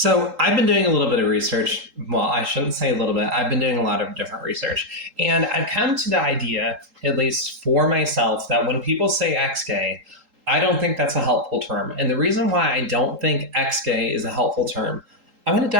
I've been doing a little bit of research. Well, I shouldn't say a little bit. I've been doing a lot of different research. And I've come to the idea, at least for myself, that when people say ex-gay, I don't think that's a helpful term. And the reason why I don't think ex-gay is a helpful term, I'm going to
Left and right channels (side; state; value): left; late; 3.8 ms